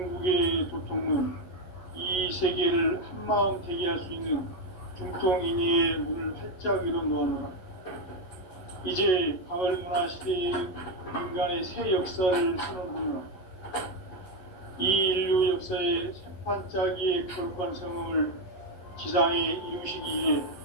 도통은 이 세계를 한마음 되게 할 수 있는 중통인의의 문을 활짝 열어놓았노라. 이제 가을문화 시대의 인간의 새 역사를 선언하노라. 이 인류 역사의 새판짜기의 거룩한 성음을 지상에 이루시기 위해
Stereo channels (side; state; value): right; late; 11 ms